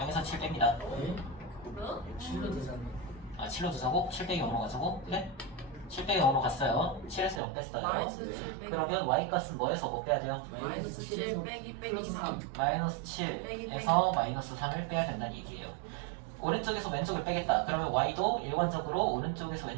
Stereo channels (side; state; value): left; drops out; at 7.4 s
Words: 7 뺍니다. 네? 7로 되잖아. 아 7로 두자고? 7 빼기 0으로 가자고? 그래? 7 빼기 0으로 갔어요. 7에서 0 뺐어요. 마이너스 7 빼기 그러면 y값은 뭐에서 뭐 빼야 돼요? 마이너스 7 빼기 3. 마이너스 7에서 마이너스 3을 빼야 된다는 얘기예요. 오른쪽에서 왼쪽을 빼겠다. 그러면 y도 일관적으로 오른쪽에서